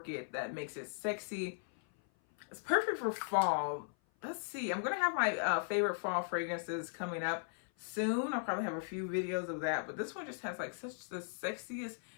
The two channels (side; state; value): right; silent; 53 dB below the other